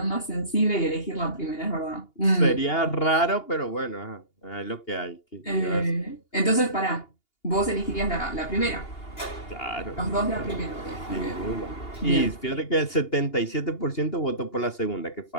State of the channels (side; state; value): right; late; 2.8 ms